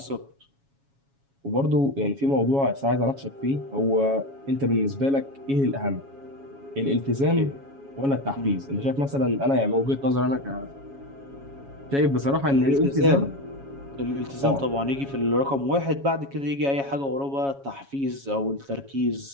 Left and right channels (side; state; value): left; late; 7.2 ms